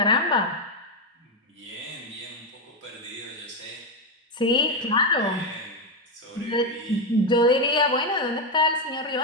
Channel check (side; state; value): both; normal; correlation 0.07